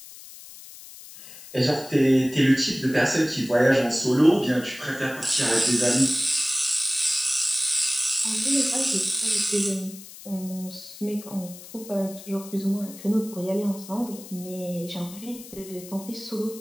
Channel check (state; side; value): noise; left; hiss, 16 dB below the sound